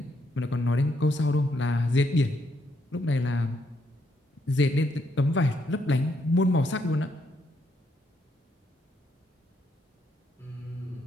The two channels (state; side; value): normal; both; correlation 0.75